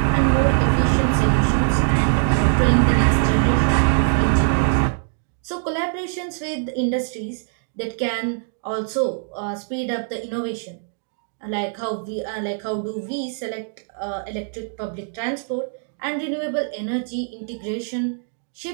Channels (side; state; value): left; silent; digital silence